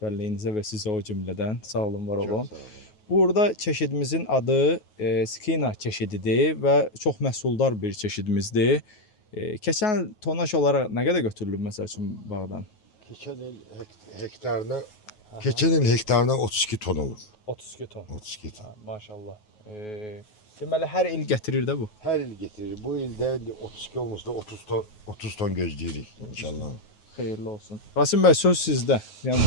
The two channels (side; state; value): right; late; 9.4 ms